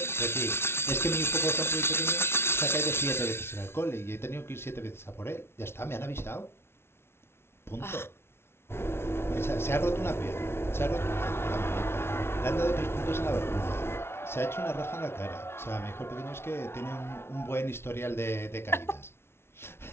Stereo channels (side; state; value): right; late; 0.12 ms